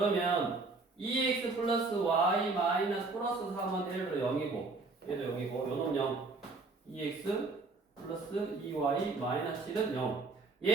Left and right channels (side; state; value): left; quieter; 3.7 dB